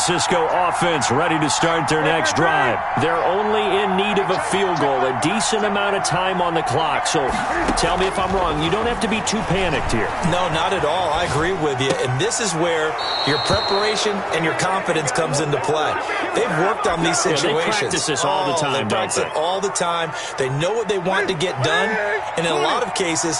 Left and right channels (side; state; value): both; identical; correlation 1.00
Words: offense ready to start their next drive. They're only in need of a field goal, a decent amount of time on the clock. So tell me if I'm wrong. You don't have to be too panicked here. No, not at all. I agree with you. And this is where your preparation and your confidence comes into play. They've worked on these situations. Yeah, they practice this all the time, they practice it all the time. They know what they want to get done. And in a lot of